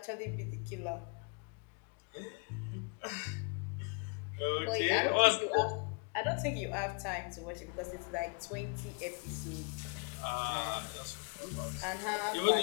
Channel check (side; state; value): right; quieter; 37.2 dB